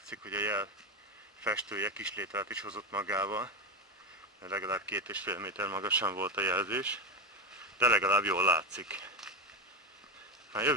hogy a jel festője kislételt is hozott magával, mert legalább 2,5 méter magasan volt a jelzés, de legalább jól látszik. Már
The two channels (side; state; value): both; normal; correlation 0.16